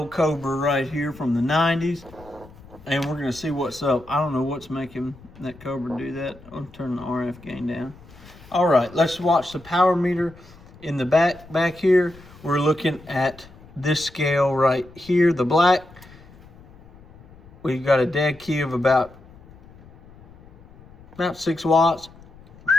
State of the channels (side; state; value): left; noise; rumble, 22 dB below the sound